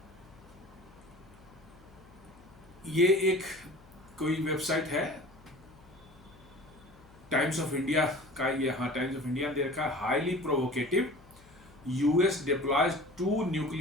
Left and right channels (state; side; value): noise; left; hum, 25 dB below the sound